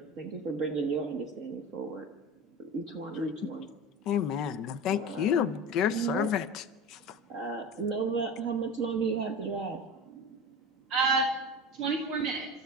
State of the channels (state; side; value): normal; both; correlation 0.30